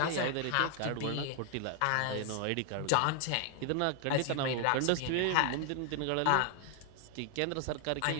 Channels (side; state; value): both; different; correlation 0.00